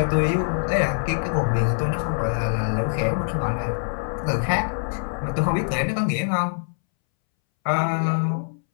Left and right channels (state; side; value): silent; right; 63 dB below the other